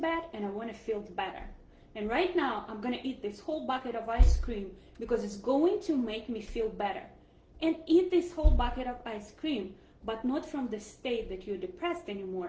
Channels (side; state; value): both; identical; correlation 1.00